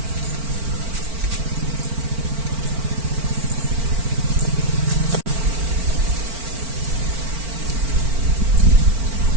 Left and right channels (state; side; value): late; left; 4.4 ms